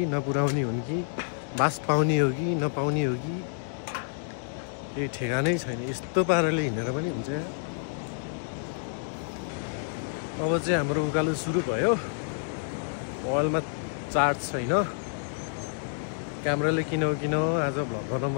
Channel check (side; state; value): right; silent; digital silence